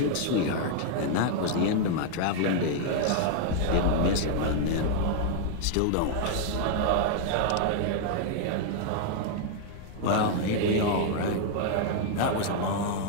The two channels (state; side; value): different; both; correlation 0.00